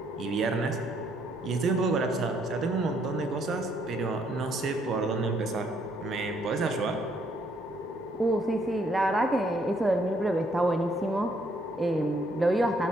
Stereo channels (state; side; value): normal; both; correlation 0.69